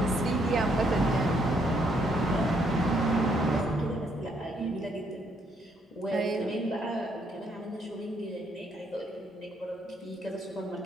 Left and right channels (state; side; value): normal; both; correlation 0.72